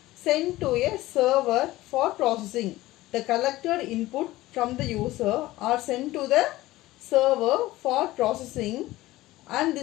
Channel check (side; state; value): right; quieter; 17.4 dB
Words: sent to a server for processing. The collected input from the user are sent to the server for processing, and